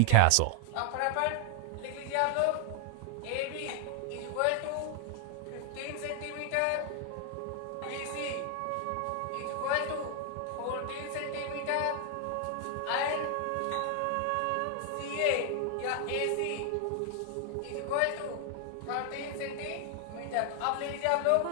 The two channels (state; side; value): different; both; correlation 0.00